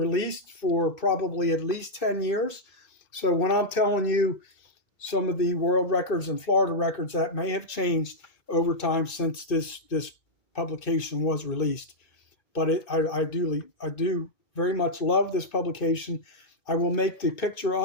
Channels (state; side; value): late; right; 2.5 ms